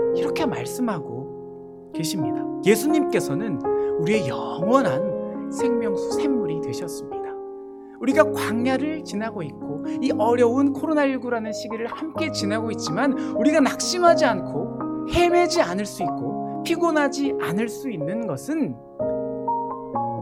이렇게 말씀하고 계십니다. 예수님께서는 우리의 영원한 생명수 샘물이 되셨습니다. 우리가 광야를 지나고 있고 이 어려운 코로나19라는 시기를 함께 지나고 있지만 우리가 낙심하지 않고 헤매지 않을 수 있고 피곤하지 않을 수 있는 것은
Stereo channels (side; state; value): both; identical; correlation 1.00